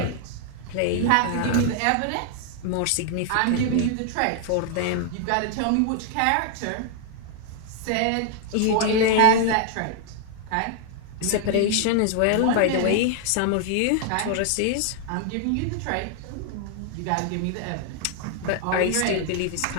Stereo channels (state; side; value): different; both; correlation 0.00